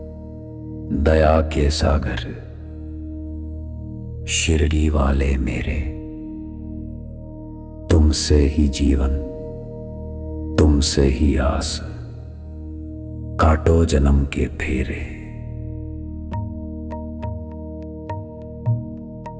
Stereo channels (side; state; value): both; identical; correlation 1.00